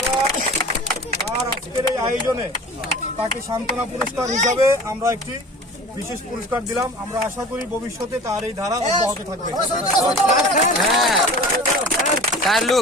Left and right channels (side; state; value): both; normal; correlation 0.39